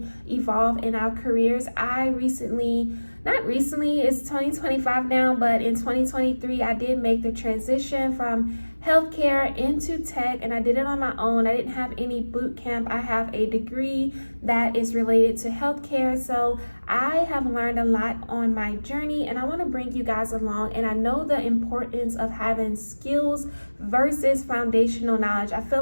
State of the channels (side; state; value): both; inverted; correlation -1.00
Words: evolve in our careers. Not recently, it's 2025 now, but in 2023, I did make the transition from healthcare into tech, and I did it on my own. I didn't have any boot camp. I have a degree that is related to healthcare, so I have learned a lot on my journey, and I want to bring you guys along. And I know the importance of having skills versus foundational knowledge. I feel